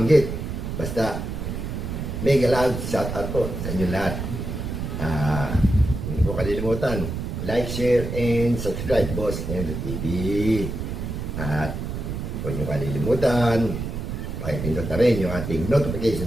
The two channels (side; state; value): right; noise; rumble, 5 dB below the sound